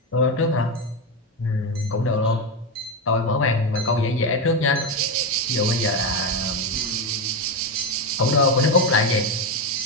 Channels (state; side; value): normal; both; correlation 0.11